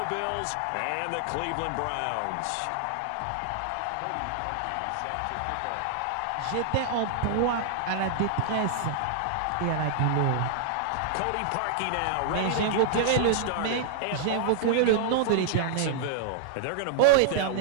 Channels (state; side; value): different; both; correlation -0.01